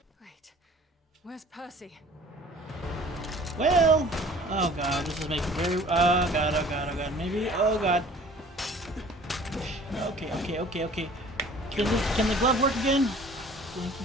Wait, where's Percy? Well. Oh god, this is making very. Oh god, oh god, oh god. Maybe. Oh god. Okay, okay, okay, okay. Can the glove work again?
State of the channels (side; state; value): both; normal; correlation 0.49